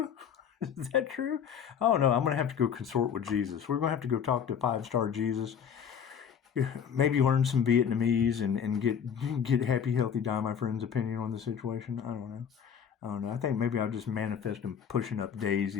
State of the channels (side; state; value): right; quieter; 7.8 dB